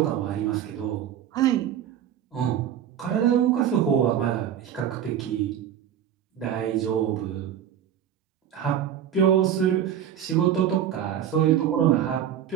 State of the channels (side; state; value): left; quieter; 9.7 dB